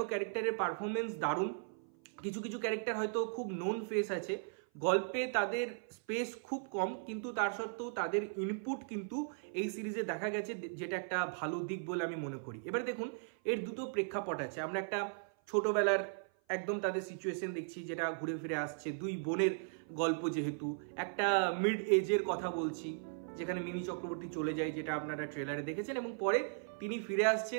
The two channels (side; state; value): left; silent; 53 dB below the other